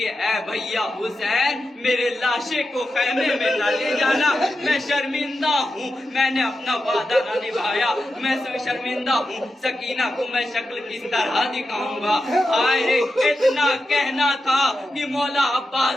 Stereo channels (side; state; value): both; normal; correlation 0.90